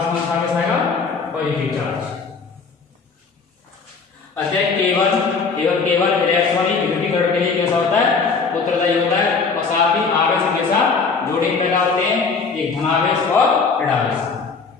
कौन सा आवेश आएगा, पॉजिटिव चार्ज। अतः केवल इलेक्ट्रॉनिक विद्युतीकरण के लिए कैसा होता है, उत्तरदायी होता है, और साथ ही आवेश हमेशा जोड़े पैदा होते हैं, एक धनावेश और ऋणावेश।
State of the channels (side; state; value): right; quieter; 4.9 dB